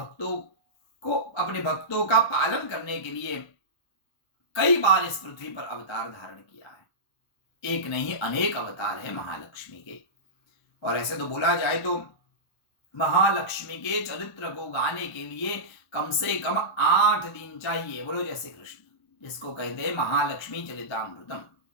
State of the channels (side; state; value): right; late; 1.0 ms